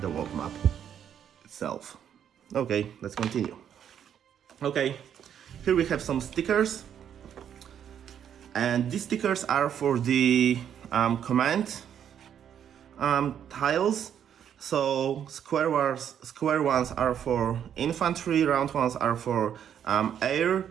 world map itself. Okay, let's continue. Okay, here we have some stickers, and these stickers are for the command tiles. So square ones are for infantry, round ones are for air,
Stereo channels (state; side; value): quieter; left; 9.1 dB